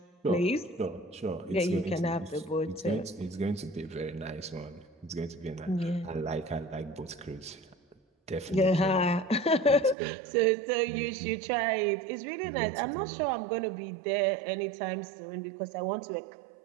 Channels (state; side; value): drops out; left; at 10.0 s